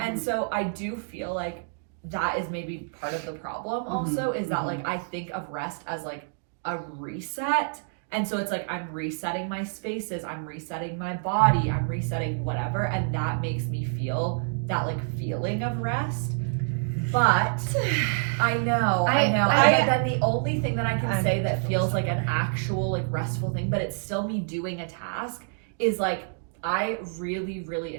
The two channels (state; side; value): silent; left; digital silence